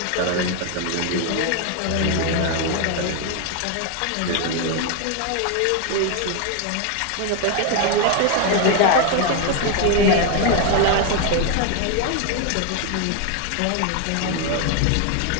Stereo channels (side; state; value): both; different; correlation 0.01